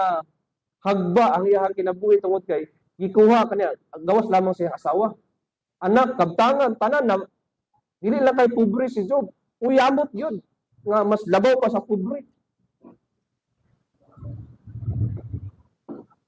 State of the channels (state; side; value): identical; both; correlation 1.00